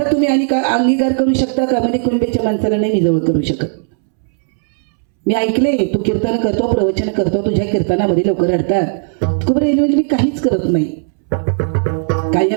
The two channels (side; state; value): left; silent; 69 dB below the other